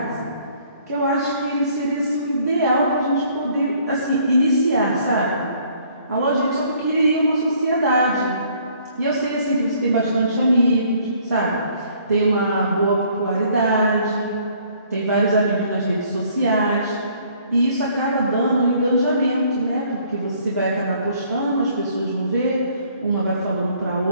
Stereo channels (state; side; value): inverted; both; correlation -0.61